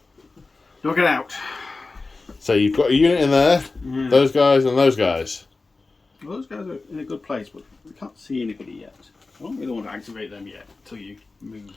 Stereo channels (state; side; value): quieter; right; 3.7 dB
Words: Knock it out. So you've got a unit in there, those guys and those guys. Well, those guys are in a good place, but we can't see anybody yet. I don't really want to activate them yet until you move